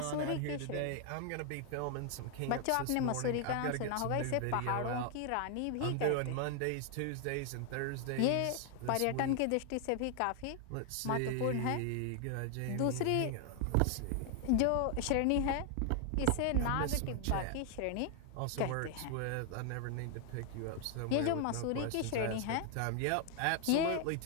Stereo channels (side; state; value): both; different; correlation 0.00